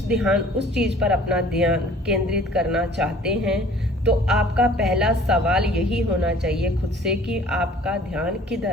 चीज़ पर अपना ध्यान केंद्रित करना चाहते हैं तो आपका पहला सवाल यही होना चाहिए खुद से कि आपका ध्यान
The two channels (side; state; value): both; normal; correlation 0.52